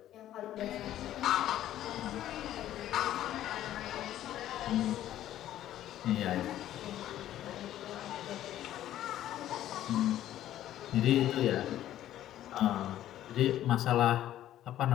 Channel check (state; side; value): quieter; right; 12.6 dB